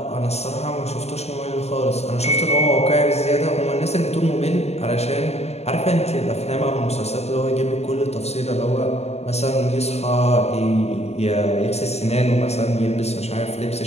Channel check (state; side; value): late; right; 0.31 ms